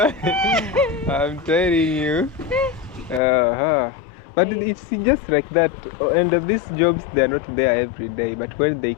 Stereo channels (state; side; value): drops out; right; at 3.2 s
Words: I'm telling you. But it's just like that. And these jobs, they're not there every day. But when they